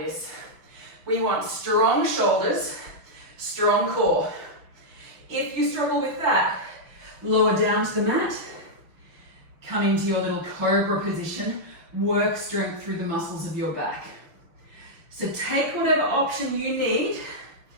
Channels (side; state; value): left; late; 6.0 ms